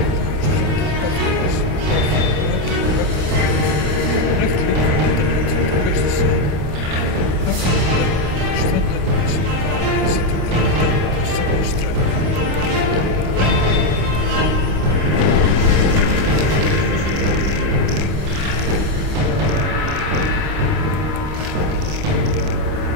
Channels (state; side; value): late; left; 27 ms